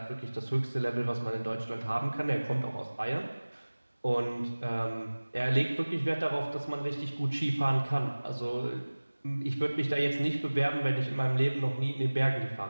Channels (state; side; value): inverted; both; correlation -1.00